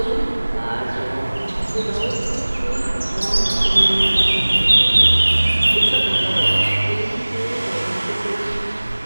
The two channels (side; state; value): both; inverted; correlation -1.00